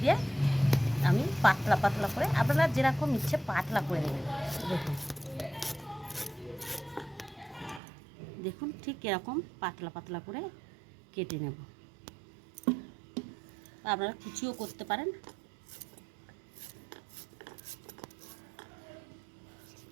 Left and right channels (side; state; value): left; drops out; at 7.8 s